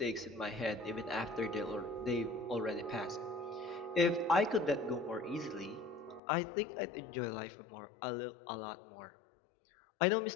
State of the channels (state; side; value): drops out; right; at 6.2 s